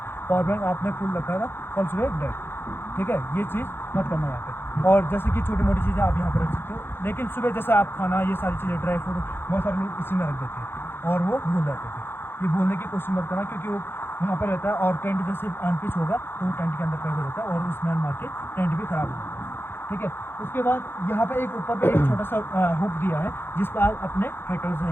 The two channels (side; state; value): right; late; 0.10 ms